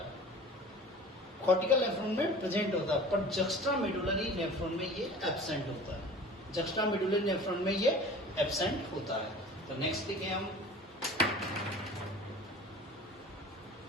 कॉर्टिकल नेफ्रॉन में प्रेजेंट होता है, पर जक्स्ट्रा मेडुलरी नेफ्रॉन में ये एब्सेंट होता है, जक्स्ट्रा मेडुलरी नेफ्रॉन में ये एब्सेंट होता है। तो नेक्स्ट लिखे हम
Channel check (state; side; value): normal; both; correlation 0.41